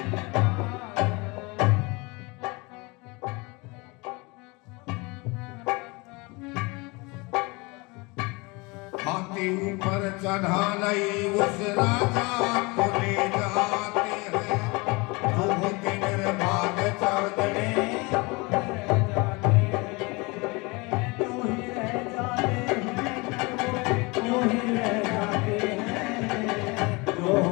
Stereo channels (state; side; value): quieter; right; 26.4 dB